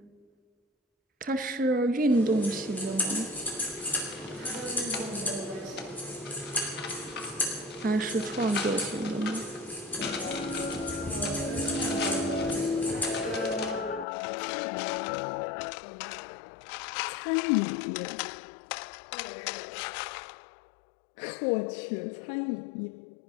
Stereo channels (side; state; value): right; drops out; at 14.1 s